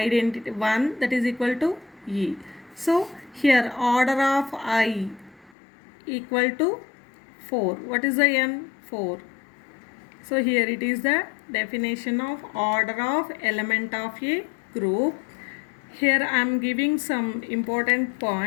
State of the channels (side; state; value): right; drops out; at 5.5 s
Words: 1, that is equal to E. So here order of I equal to 4. What is the n? 4. So here it is the definition of order of element of a group. Here I am giving some important